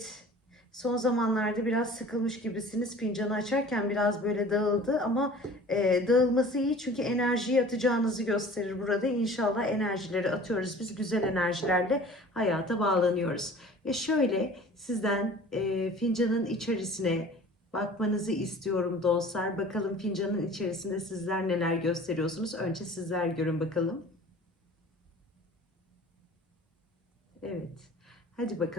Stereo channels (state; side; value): normal; both; correlation 0.45